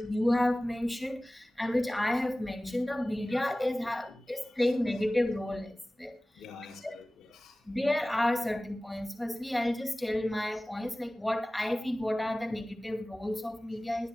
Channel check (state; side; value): normal; both; correlation 0.98